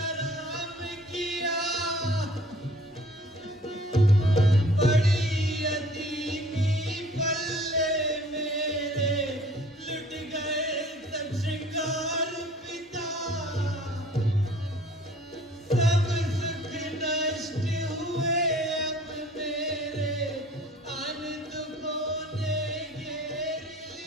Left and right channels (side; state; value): both; normal; correlation 0.52